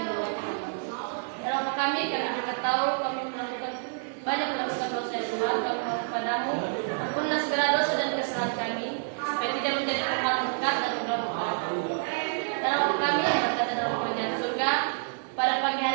berdoa. Dalam kami juga tahu kami banyak melakukan dosa Tuhan, kami mohon kepadamu ampunlah segala dosa dan kesalahan kami supaya tidak menjadi tempat berkat dan berdoa. Dalam kami yang berada dalam kerajaan surga, pada pagi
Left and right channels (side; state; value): left; silent; digital silence